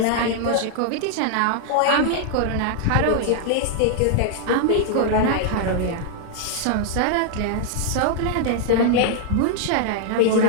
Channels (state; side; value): different; both; correlation 0.00